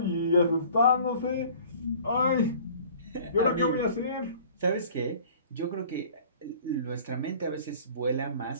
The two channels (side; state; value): both; inverted; correlation -0.49